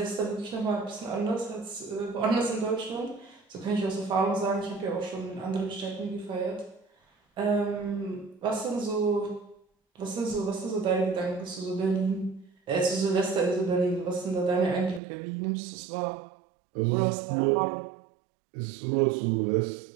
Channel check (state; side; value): drops out; left; at 15.0 s